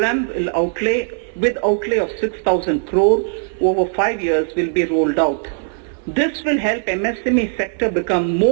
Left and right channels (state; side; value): silent; left; 67 dB below the other